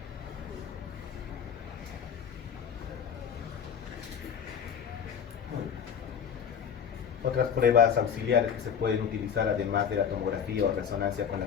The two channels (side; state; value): right; quieter; 7.7 dB